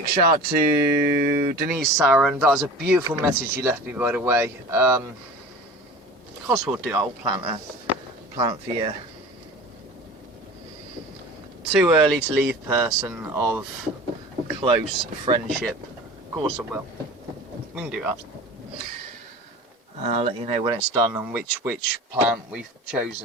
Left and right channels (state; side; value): normal; both; correlation 0.38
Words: shout to Denise Saran. That was a beautiful message you left me, by the way. Of course we'll do, I'll plant for you. Too early to leave person of close friendship. Of course I will. We can do that. I'll let you know when it's done and which plant we've